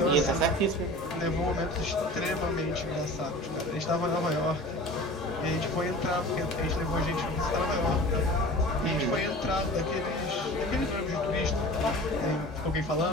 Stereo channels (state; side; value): normal; both; correlation 0.39